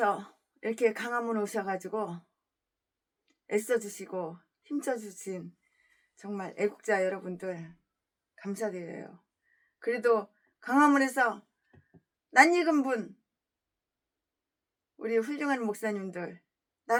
이렇게 강화문 오셔가지고 애써주시고 힘써주신 정말 애국자 여러분들 감사드려요. 그래도 강화문에서 낯익은 분, 우리 훌륭한 목사님들,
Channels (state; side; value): identical; both; correlation 1.00